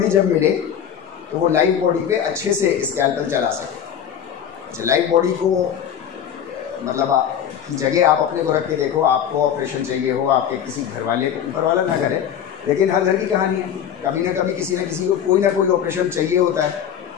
जब मिले तो वो लाइव बॉडी पे अच्छे से स्कैल्पेल चला सके। अच्छा, लाइव बॉडी को मतलब की जगह आप अपने को रख के देखो, आपको ऑपरेशन चाहिए हो, आपके किसी घर वाले को, ऊपर वाला ना करे, लेकिन हर घर की कहानी है, कभी ना कभी किसी न किसी को कोई ना कोई ऑपरेशन चाहिए होता है।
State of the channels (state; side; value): quieter; right; 9.0 dB